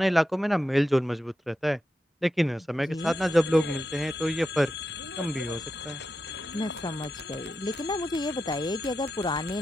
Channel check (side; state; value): both; normal; correlation 0.89